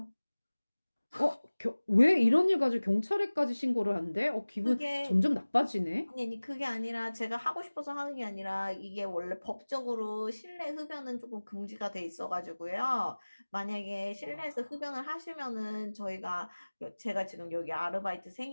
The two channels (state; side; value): inverted; both; correlation -1.00